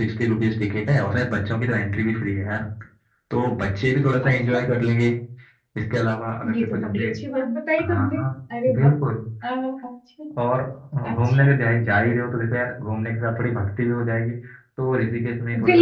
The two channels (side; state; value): both; identical; correlation 1.00